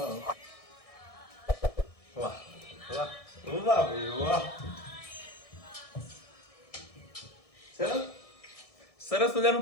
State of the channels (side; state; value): right; late; 1.6 ms